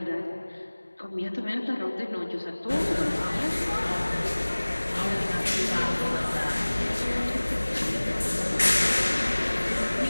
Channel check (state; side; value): inverted; both; correlation -1.00